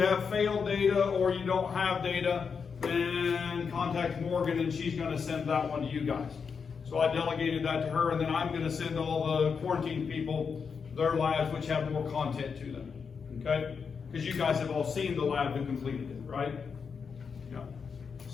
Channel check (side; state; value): right; quieter; 5.9 dB